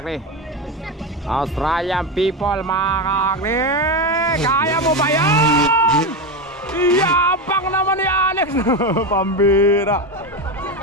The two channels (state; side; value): normal; both; correlation 0.15